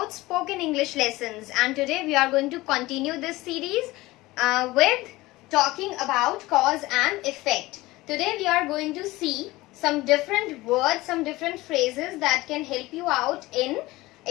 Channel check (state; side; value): quieter; right; 19.5 dB